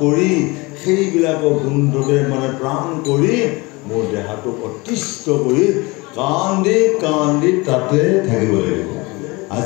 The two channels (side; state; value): right; quieter; 24.6 dB